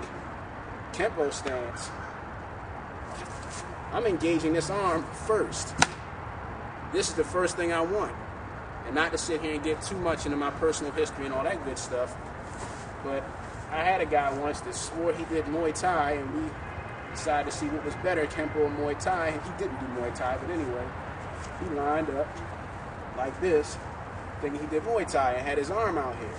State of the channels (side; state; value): both; identical; correlation 1.00